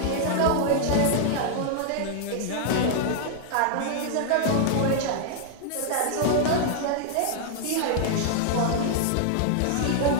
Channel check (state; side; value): different; both; correlation -0.01